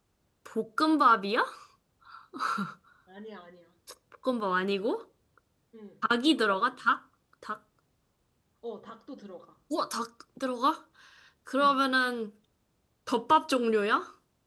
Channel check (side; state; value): both; identical; correlation 1.00